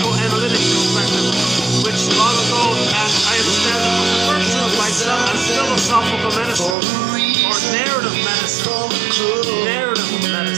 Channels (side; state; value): left; drops out; at 6.8 s